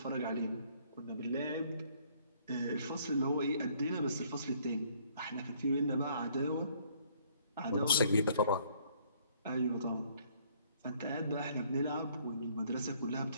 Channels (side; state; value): both; inverted; correlation -0.63